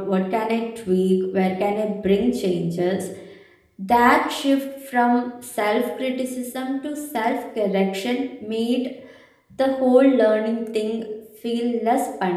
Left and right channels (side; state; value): both; identical; correlation 1.00